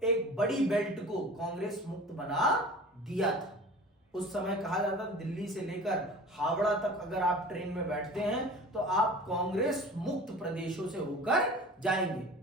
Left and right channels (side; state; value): both; normal; correlation 0.40